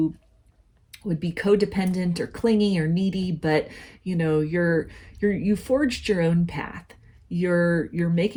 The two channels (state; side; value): identical; both; correlation 1.00